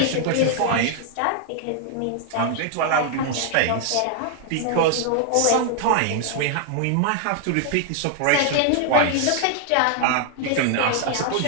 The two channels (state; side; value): different; both; correlation 0.00